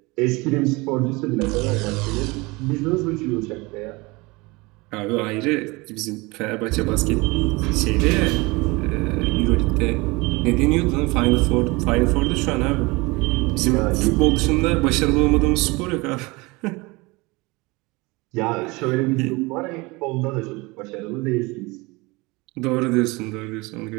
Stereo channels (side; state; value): left; quieter; 24.4 dB